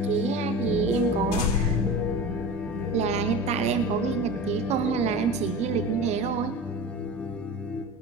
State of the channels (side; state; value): both; normal; correlation 0.32